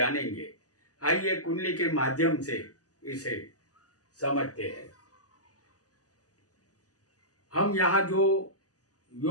आइए कुंडली के माध्यम से इसे समझते हैं। हम यहाँ जो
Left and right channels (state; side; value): late; right; 0.67 ms